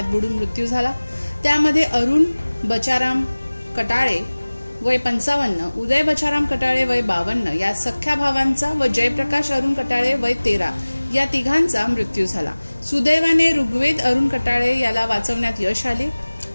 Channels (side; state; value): both; inverted; correlation -1.00